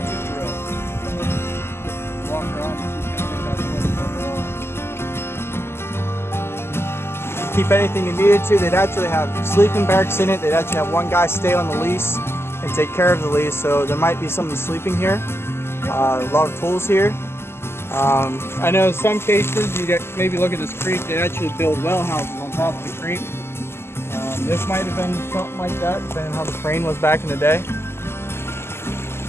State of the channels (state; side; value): late; right; 0.12 ms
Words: drill. Walk around and she's gonna pick out the what's going on. Keep anything you needed to. They'd actually have sleeping barracks in it. They'd actually have one guy stay on the lease and take care of the lease. So there might be someone sleeping here. A lot of tools here. I know in some cases you get maybe look at this creek. They actually build well houses on top of the creek. This might have been something like that, depending on how the crane was back in the day.